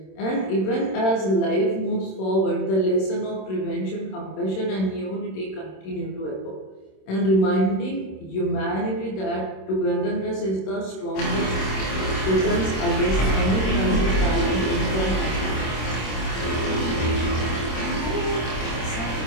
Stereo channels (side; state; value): right; late; 26 ms